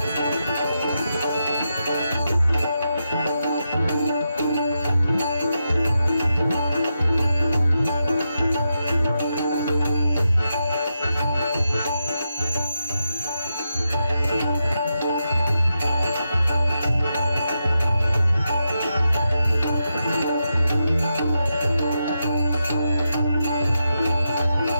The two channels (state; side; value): inverted; both; correlation -0.86